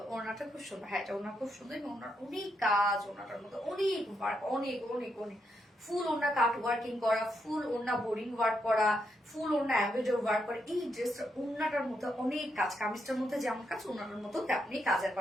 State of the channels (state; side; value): normal; both; correlation 0.80